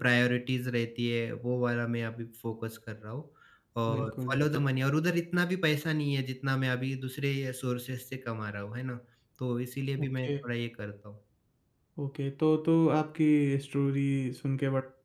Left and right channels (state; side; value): identical; both; correlation 1.00